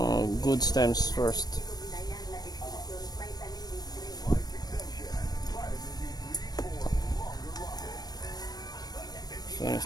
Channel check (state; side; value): late; right; 0.19 ms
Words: good stems first. This one